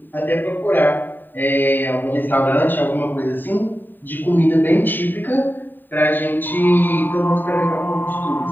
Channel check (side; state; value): right; late; 0.091 ms